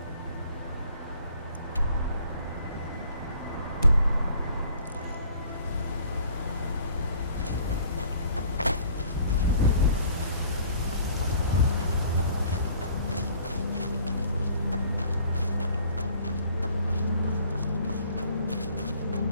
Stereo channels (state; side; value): inverted; both; correlation -0.55